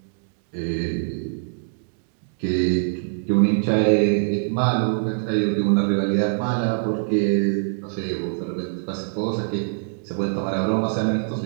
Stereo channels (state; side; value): silent; left; digital silence